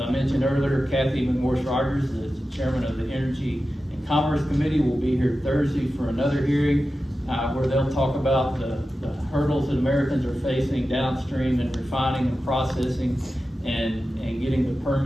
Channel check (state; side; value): normal; both; correlation 0.93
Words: mentioned earlier, Kathy McMorris-Rogers, the chairman of the Energy and Commerce Committee, will be here Thursday for another hearing where they'll talk about the hurdles that Americans are facing downstream in refining and processing and getting the